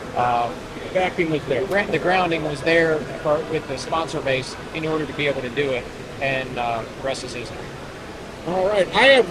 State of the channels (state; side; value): identical; both; correlation 1.00